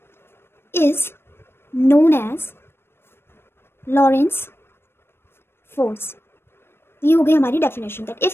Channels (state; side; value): late; right; 0.12 ms